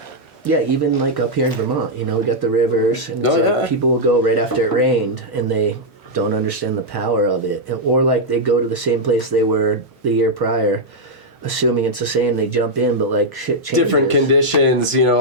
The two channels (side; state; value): both; normal; correlation -0.04